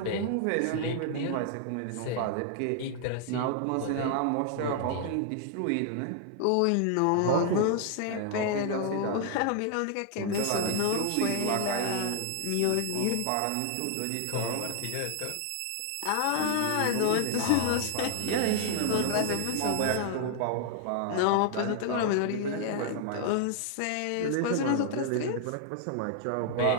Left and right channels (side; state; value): both; different; correlation 0.00